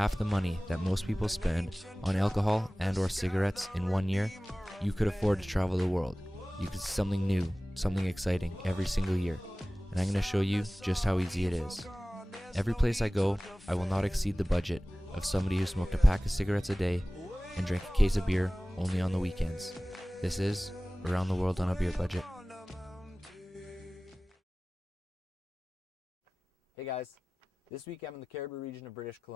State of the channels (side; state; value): both; normal; correlation 0.98